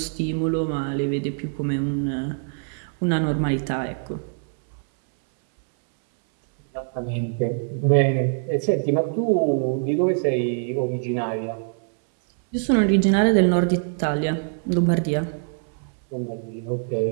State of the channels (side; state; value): left; silent; 63 dB below the other